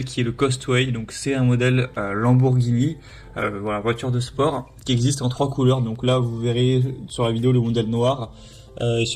qui est le Costway. Donc c'est un modèle Lamborghini, voilà, voiture de sport qui existe en 3 couleurs. Donc là vous verrez sur la vidéo le modèle noir et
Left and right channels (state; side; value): identical; both; correlation 1.00